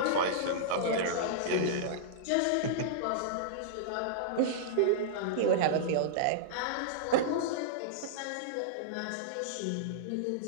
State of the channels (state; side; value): different; both; correlation -0.02